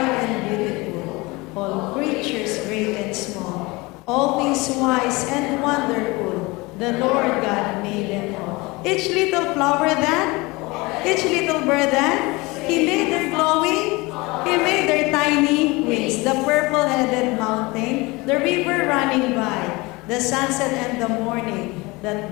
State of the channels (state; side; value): quieter; right; 23.7 dB